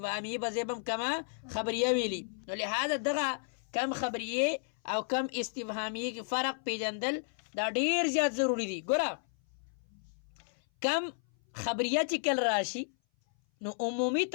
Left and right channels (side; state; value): right; silent; 56 dB below the other